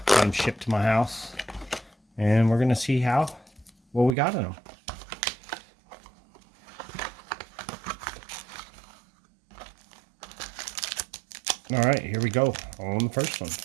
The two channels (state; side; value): drops out; left; at 4.2 s